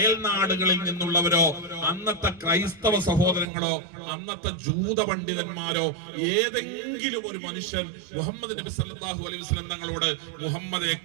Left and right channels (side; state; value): left; drops out; at 3.5 s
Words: നിന്നുള്ളവരോ അന്നത്തെ ക്രൈസ്തവ സഹോദരങ്ങളോ അന്നത്തെ ജൂത പണ്ഡിതന്മാരോ ഏതെങ്കിലും ഒരു മനുഷ്യൻ മുഹമ്മദ് നബി സല്ലല്ലാഹു അലൈഹി വസല്ലം തങ്ങളോട് മുഹമ്മദേ